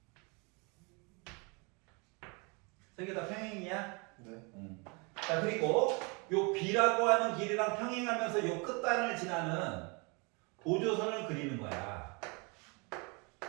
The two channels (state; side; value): quieter; left; 30.9 dB